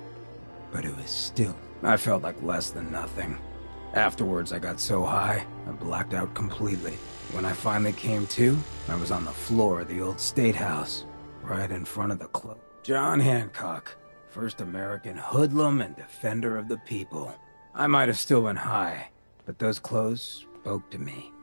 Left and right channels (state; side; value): inverted; both; correlation -1.00